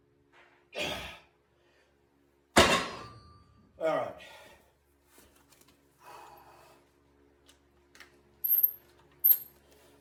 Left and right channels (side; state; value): both; identical; correlation 1.00